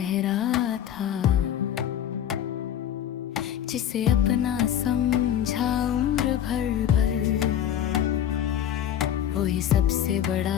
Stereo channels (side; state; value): right; quieter; 10.4 dB